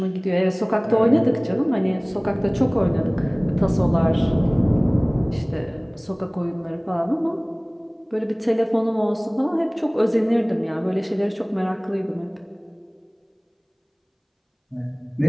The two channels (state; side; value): identical; both; correlation 1.00